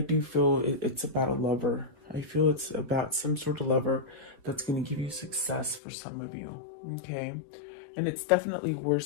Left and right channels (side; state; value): right; drops out; at 5.8 s